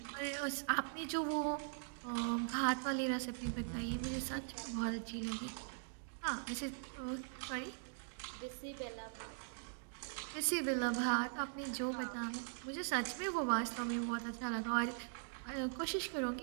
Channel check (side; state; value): left; silent; digital silence